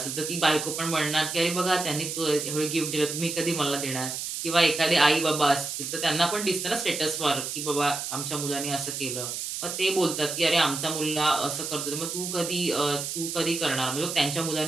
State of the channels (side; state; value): right; noise; hiss, 5 dB below the sound